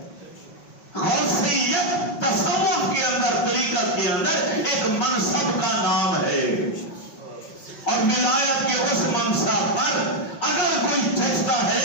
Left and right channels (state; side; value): late; right; 5.6 ms